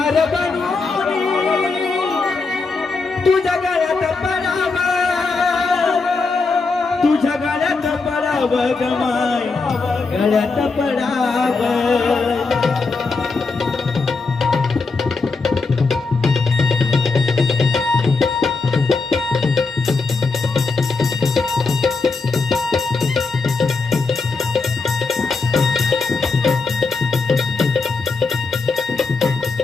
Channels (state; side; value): quieter; right; 4.1 dB